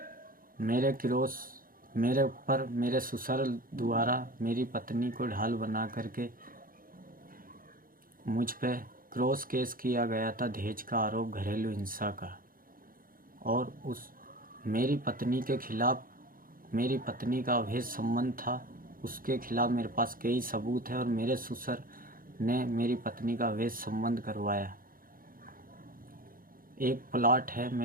मेरे ऊपर मेरे ससुर द्वारा मेरी पत्नी को ढाल बना करके मुझ पे क्रॉस केस किया गया था, दहेज का आरोप, घरेलू हिंसा का। और मेरी पत्नी के खिलाफ, मेरी पत्नी का अवैध संबंध था, उसके खिलाफ मेरे पास कई सबूत है। और मेरे ससुर ने मेरी पत्नी का अवैध संबंध करवाया। एक प्लाट है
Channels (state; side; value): late; left; 0.41 ms